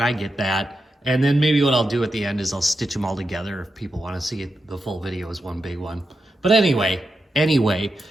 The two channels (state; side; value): normal; both; correlation 0.87